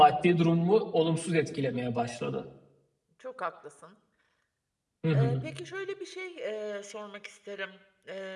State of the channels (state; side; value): identical; both; correlation 1.00